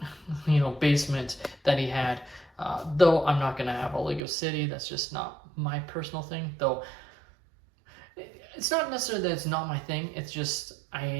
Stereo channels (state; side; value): drops out; left; at 4.2 s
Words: basement that he had, though I'm not going to have a LEGO City. That's just not my personal thing, though. It's not necessarily that it's not my thing, it's just